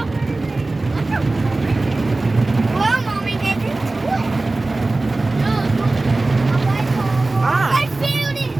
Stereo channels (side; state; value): left; quieter; 3.1 dB